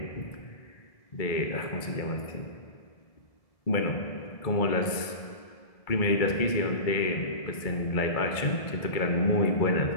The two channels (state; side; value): late; right; 1.7 ms